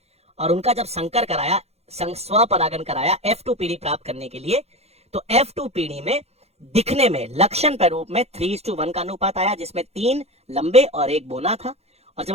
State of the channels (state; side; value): late; left; 0.30 ms